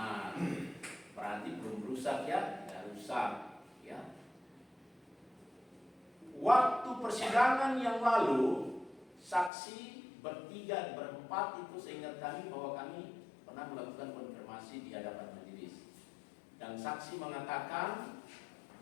Berarti belum rusak ya? Ya rusak. Ya. Waktu persidangan yang lalu, saksi bertiga, berempat itu seingat kami bahwa kami pernah melakukan konfirmasi di hadapan majelis. Dan saksi mengatakan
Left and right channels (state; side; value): drops out; right; at 9.5 s